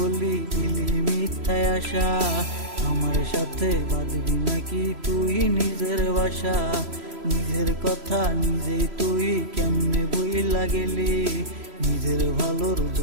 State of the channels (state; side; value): late; left; 3.0 ms